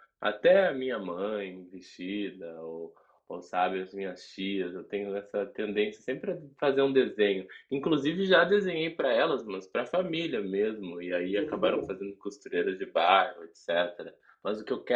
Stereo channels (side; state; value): both; identical; correlation 1.00